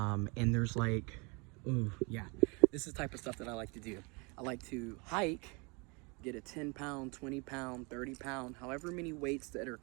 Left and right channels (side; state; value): left; quieter; 30.3 dB